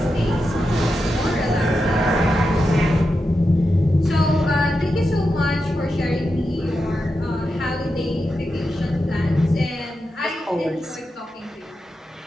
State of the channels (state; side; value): normal; both; correlation 0.89